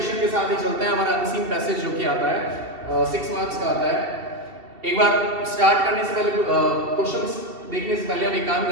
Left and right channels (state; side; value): late; left; 2.7 ms